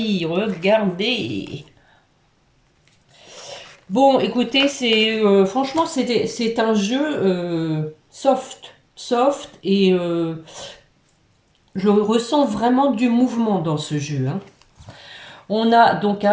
Regardez. Bon, écoutez, c'est franchement, c'est un jeu soft, et je ressens vraiment du mouvement dans ce jeu. Hein. On a donc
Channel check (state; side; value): identical; both; correlation 1.00